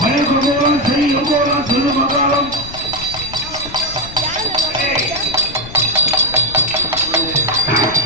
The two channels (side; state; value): left; noise; rumble, 15 dB below the sound